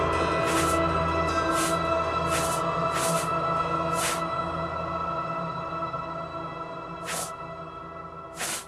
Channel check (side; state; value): both; identical; correlation 1.00